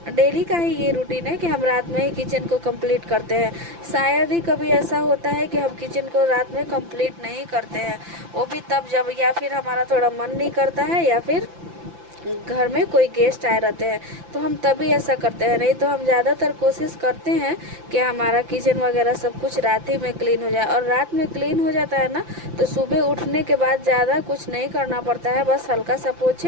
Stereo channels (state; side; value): late; left; 5.9 ms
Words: डेली का ही ये रूटीन है कि हम रात में ही किचन को कंप्लीट करते हैं। शायद ही कभी ऐसा होता है कि हम किचन को रात में कंप्लीट नहीं करते हैं, वो भी तब जब या फिर हमारा थोड़ा मन नहीं करता है या फिर घर में कोई गेस्ट आए रहते हैं, तो हम तभी ऐसा करते हैं। नहीं तो हम ज़्यादातर कोशिश करते हैं कि हमारा किचन वगैरह सब कुछ रात ही में क्लीन हो जाए। और रात में क्लीन हो जाता है ना, तो सुबह उठने के बाद ज़्यादा कुछ नहीं करना पड़ता है, बस हल्का सा